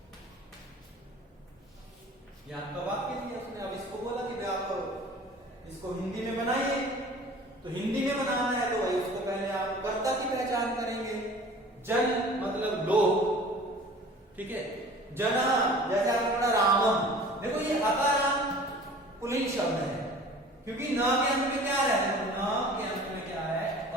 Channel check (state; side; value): normal; both; correlation 0.45